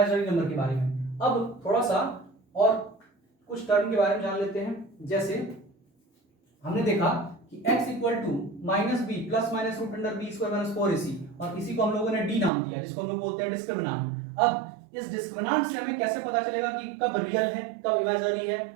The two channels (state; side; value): drops out; left; at 12.5 s